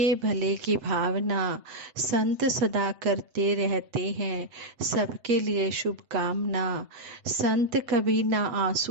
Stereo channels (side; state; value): left; late; 7.9 ms